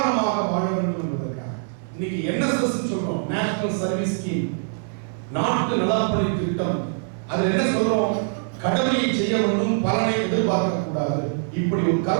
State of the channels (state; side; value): silent; left; digital silence